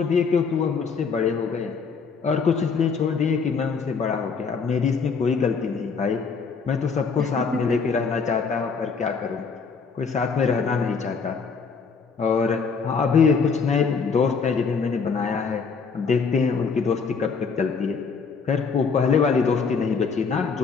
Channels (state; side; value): quieter; right; 5.3 dB